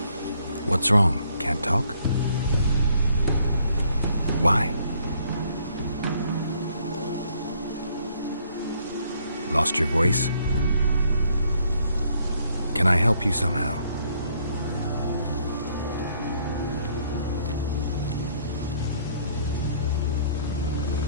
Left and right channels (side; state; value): both; inverted; correlation -0.66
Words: What's wrong? Can't talk? Why? Lost your voice? Can I help you somehow?